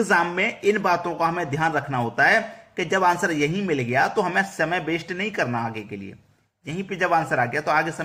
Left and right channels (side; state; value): both; identical; correlation 1.00